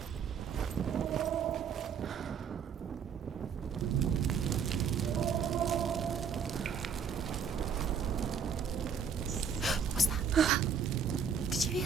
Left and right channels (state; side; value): quieter; left; 6.6 dB